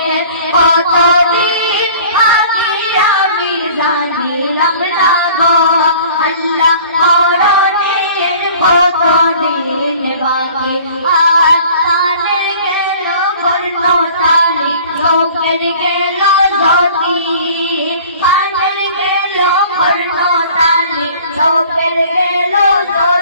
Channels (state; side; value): inverted; both; correlation -0.48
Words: কতদিন বাকি আমি জানিলাম না গো আল্লাহ মরণের কতদিন বাকি আর তানের গেল কর্ণতালি লোকের গেল জ্যোতি তানের গেল কর্ণতালি লোকের গেল